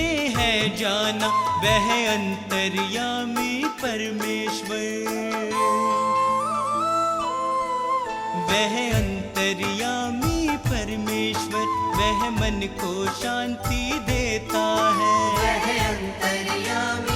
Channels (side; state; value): both; identical; correlation 1.00